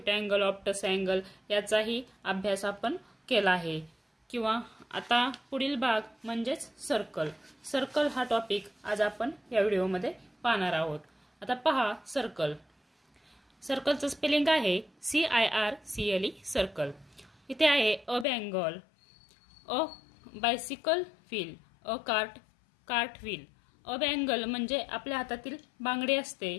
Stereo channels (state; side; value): drops out; right; at 18.2 s